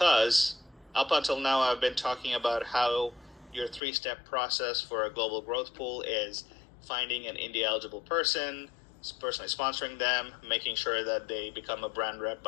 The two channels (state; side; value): drops out; right; at 3.8 s